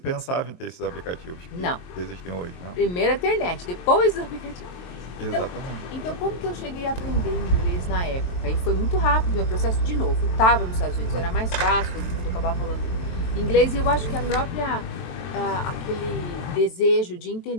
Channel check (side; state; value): right; late; 23 ms